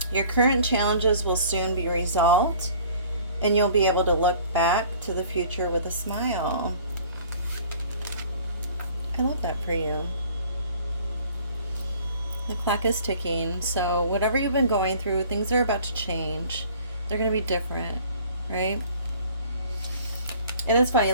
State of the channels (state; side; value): inverted; both; correlation -0.51